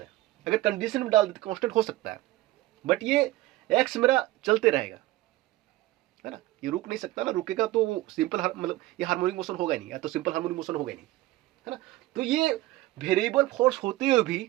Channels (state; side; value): quieter; left; 17.6 dB